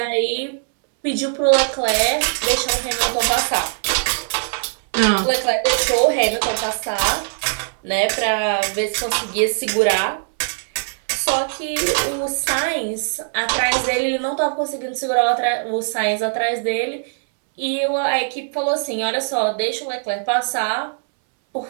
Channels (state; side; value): silent; left; 65 dB below the other